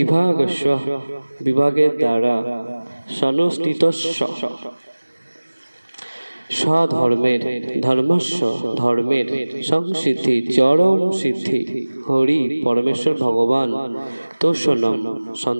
বিভাগের দ্বারা সনুষ্ঠিতস্য স্বধর্মের ধর্মস্য ধর্মের সংসিদ্ধি চরম সিদ্ধি হরি পরমেশ্বর ভগবান তোষণম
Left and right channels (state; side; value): inverted; both; correlation -1.00